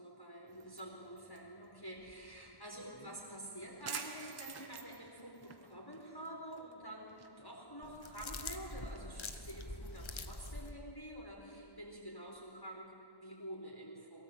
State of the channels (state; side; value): late; right; 1.1 ms